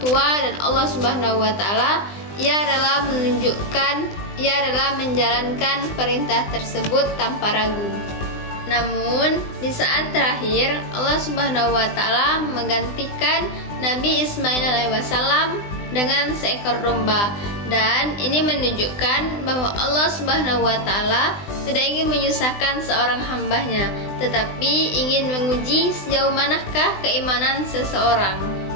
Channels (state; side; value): late; right; 20 ms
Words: tua dan Allah Subhanahu wa Ta'ala, ia rela menjalankan perintah tersebut tanpa ragu. Namun di saat terakhir Allah Subhanahu wa Ta'ala menggantikan Nabi Ismail alaihissalam dengan seekor domba, dan ini menunjukkan bahwa Allah Subhanahu wa Ta'ala tidak ingin menyusahkan seorang hambanya, tetapi ingin menguji sejauh manakah keimanan seseorang.